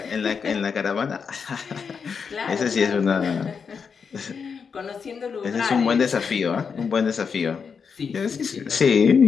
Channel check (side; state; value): right; quieter; 6.0 dB